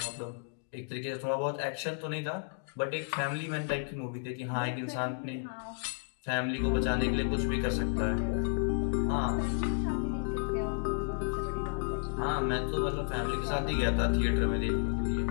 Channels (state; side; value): silent; right; digital silence